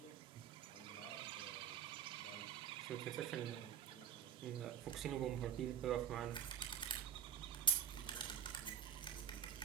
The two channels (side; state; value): left; quieter; 8.4 dB